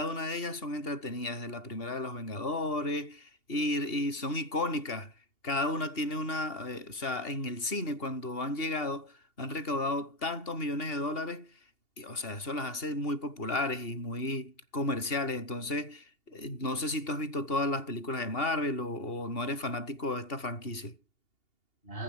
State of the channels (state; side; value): late; right; 2.8 ms